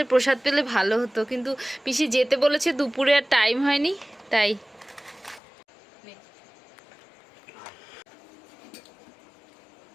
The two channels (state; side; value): drops out; right; at 5.4 s